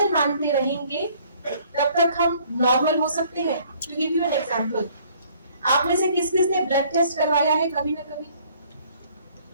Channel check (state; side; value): inverted; both; correlation -0.60